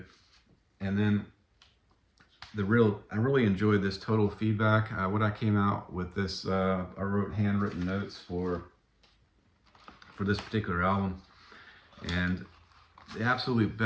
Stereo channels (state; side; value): identical; both; correlation 1.00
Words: And then I really enjoyed this Total Feedback. What I came out with this, I wrote handwritten notes for this particular album, and the absolute